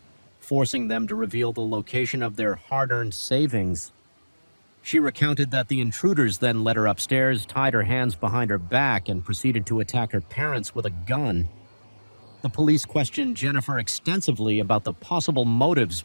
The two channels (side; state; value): both; inverted; correlation -1.00